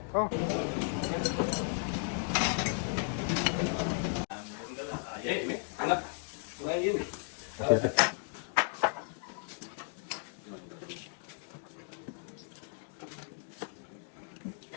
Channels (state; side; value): silent; right; 55 dB below the other